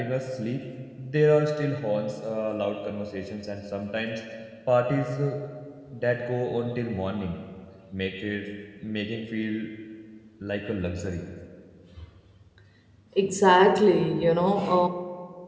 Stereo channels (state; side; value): identical; both; correlation 1.00